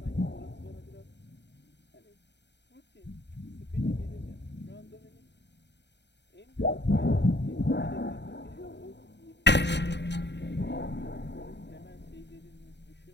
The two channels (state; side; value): late; right; 0.50 ms